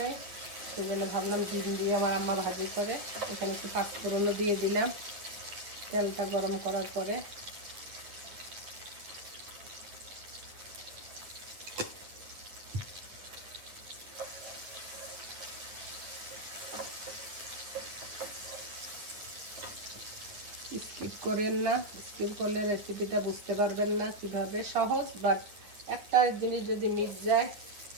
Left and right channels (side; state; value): left; late; 9.6 ms